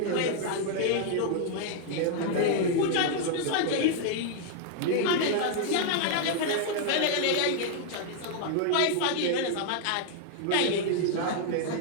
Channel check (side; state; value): both; different; correlation 0.00